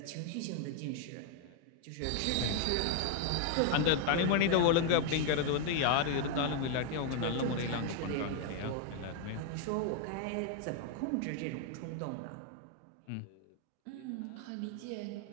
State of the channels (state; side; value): different; both; correlation 0.00